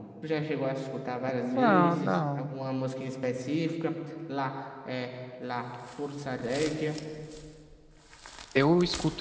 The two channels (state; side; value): identical; both; correlation 1.00